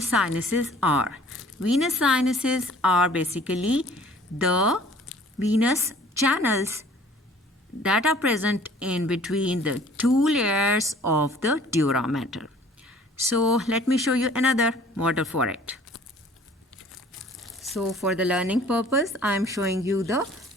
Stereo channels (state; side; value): normal; both; correlation 0.53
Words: sinuses are. Venous sinuses are basically the venous channels that are present in between the two layers of the dura mater. So let me show you another model for it. So for the learning purpose, I am showing you the